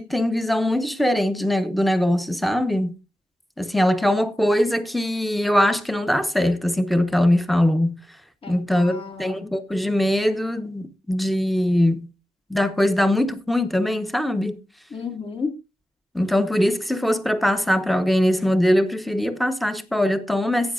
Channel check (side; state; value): both; normal; correlation 0.94